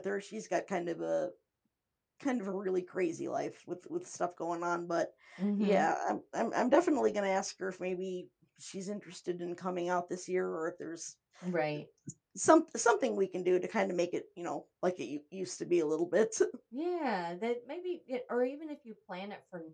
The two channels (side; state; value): both; identical; correlation 1.00